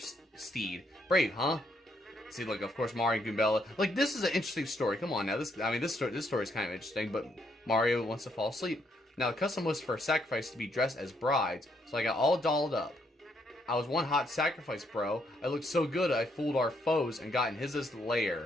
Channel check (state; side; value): normal; both; correlation 0.74